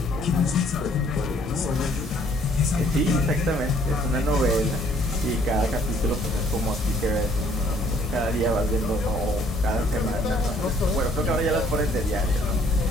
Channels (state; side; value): normal; both; correlation 0.61